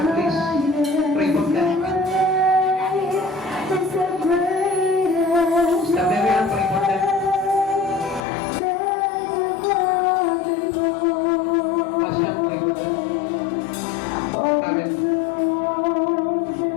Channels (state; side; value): drops out; right; at 8.2 s